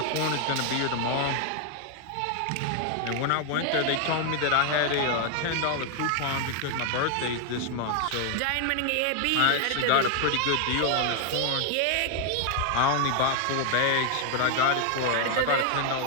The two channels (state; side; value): different; both; correlation 0.00